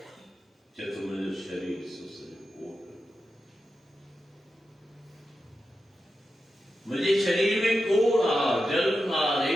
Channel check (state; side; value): normal; both; correlation 0.90